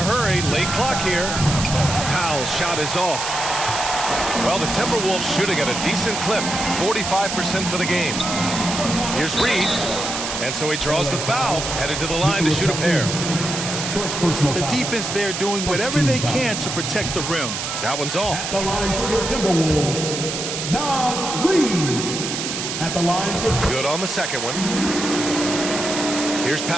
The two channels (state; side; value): noise; right; hiss, 4 dB below the sound